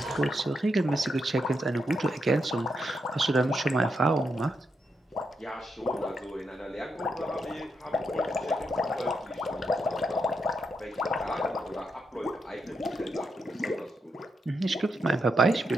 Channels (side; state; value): both; normal; correlation 0.82